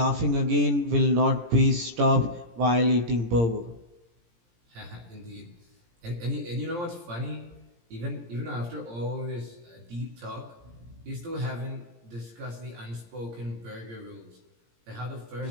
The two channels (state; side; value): late; left; 17 ms